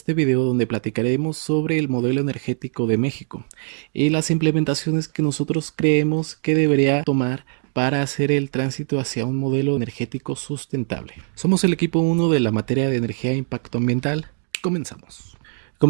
video donde platicaremos sobre el modelo energético de México y las implementaciones que nosotros creemos que debería tomar para hacer el tránsito hacia un modelo energético sustentable. Somos el equipo 1 de la materia de energía e impacto ambiental. Comenzamos.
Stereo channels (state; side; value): silent; left; 64 dB below the other